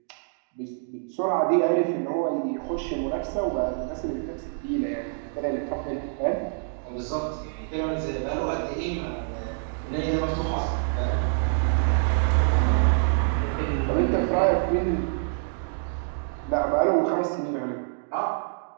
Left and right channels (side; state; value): left; silent; digital silence